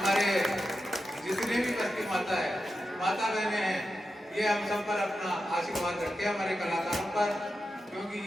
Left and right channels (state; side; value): normal; both; correlation 0.89